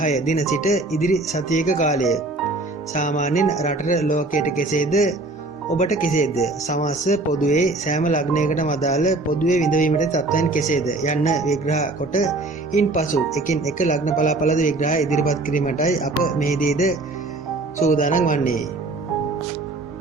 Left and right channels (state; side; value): quieter; left; 3.0 dB